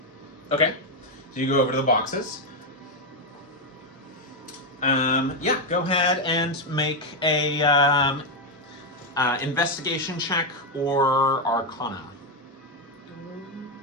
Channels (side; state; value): both; normal; correlation 0.04